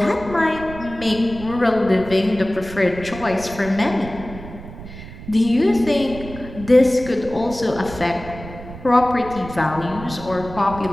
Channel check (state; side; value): noise; right; rumble, 13 dB below the sound